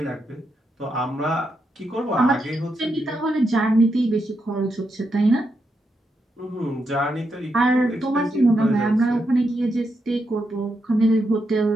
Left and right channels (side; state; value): both; normal; correlation 0.83